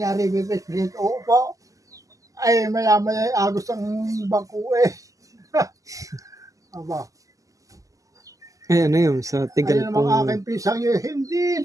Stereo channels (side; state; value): left; late; 0.16 ms